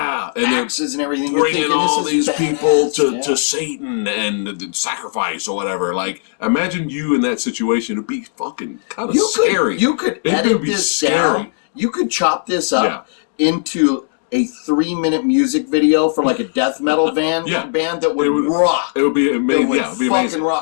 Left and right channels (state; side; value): silent; right; digital silence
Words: and everything. Bringing all these people to Satan and sacrifice or whatever. Like, imagine you in that situation. It'd be fucking kind of scary. You could edit this down. You could chop this up into a 3-minute music video for like a death metal band that would rock. It would be amazing. It would be amazing.